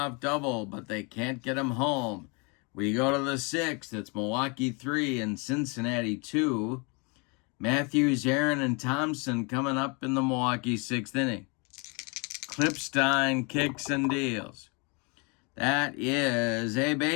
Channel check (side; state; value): right; quieter; 31.8 dB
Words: double, but they can't get him home. We go to the 6th. It's Milwaukee 3 and Cincinnati 2. Matthews, Aaron, and Thompson coming up in the Milwaukee 6th inning. Klippstein kicks and deals. That is a